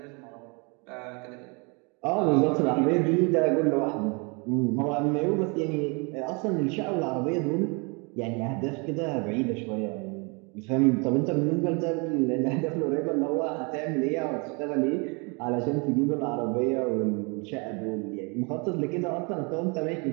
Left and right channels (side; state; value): left; quieter; 31.9 dB